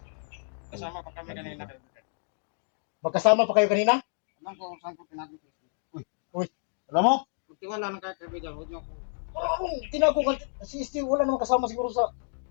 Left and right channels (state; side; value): silent; right; digital silence